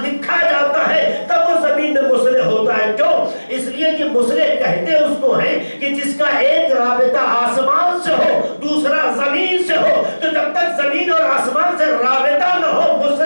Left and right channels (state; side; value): inverted; both; correlation -1.00